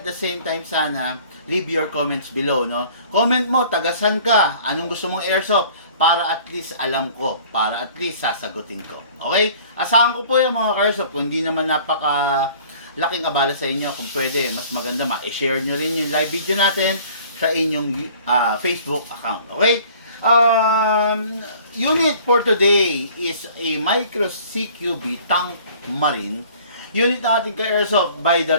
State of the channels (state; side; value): inverted; both; correlation -0.51